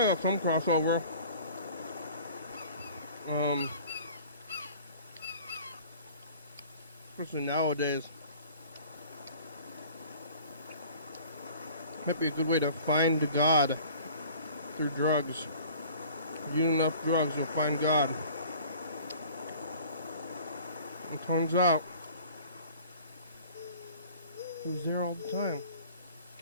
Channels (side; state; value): both; inverted; correlation -0.48